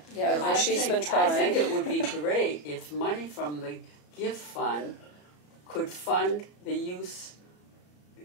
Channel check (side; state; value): right; late; 34 ms